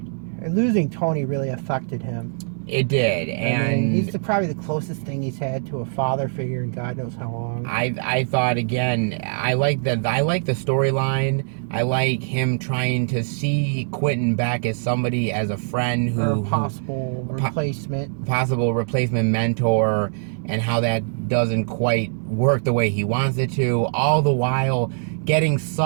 losing Tony really affected him. It did, and he's probably the closest thing he's had to a father figure in God knows how long. I thought, again, I like the storyline. I like him trying to see Quentin back as somebody, as a friend who possible replacement mentor, and how that doesn't quite work the way he wants it to. All the while getting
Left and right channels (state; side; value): silent; left; digital silence